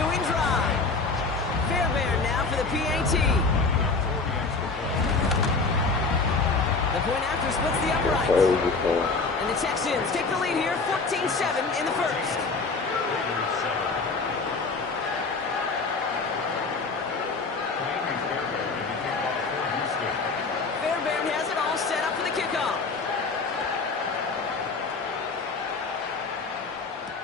drive. Fairbairn now for the PAT. The point after splits the uprights. And the Texans take the lead here, 14-7 in the first. Fairbairn has it all set up for the kickoff.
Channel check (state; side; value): quieter; right; 4.1 dB